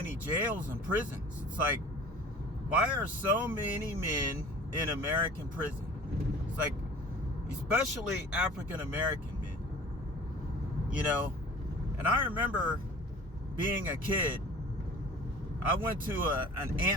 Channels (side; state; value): both; normal; correlation 0.44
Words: jails and prisons. It's like, why are so many men in American prison? It's like, especially African American men, you know. And I remember being a kid, I went to an